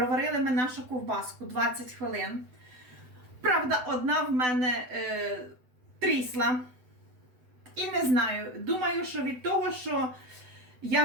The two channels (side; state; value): left; late; 8.0 ms